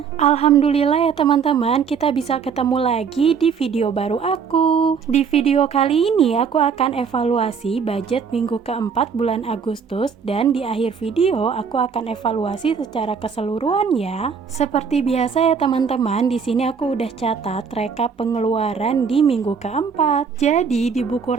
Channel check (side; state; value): left; quieter; 6.2 dB